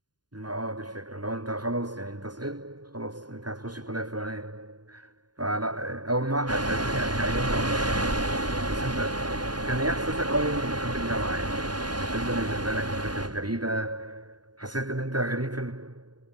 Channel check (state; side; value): late; left; 0.70 ms